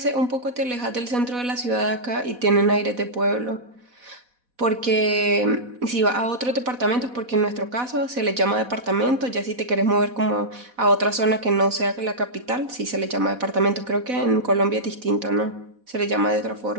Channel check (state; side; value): late; left; 4.1 ms